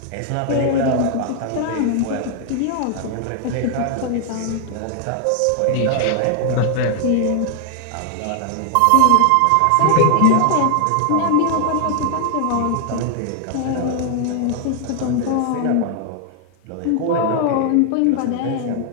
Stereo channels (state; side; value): different; both; correlation 0.00